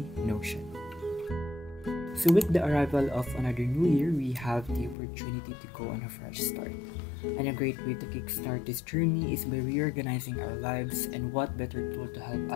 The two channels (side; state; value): right; drops out; at 5.0 s